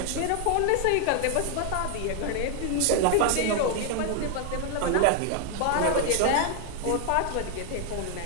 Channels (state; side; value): different; both; correlation 0.00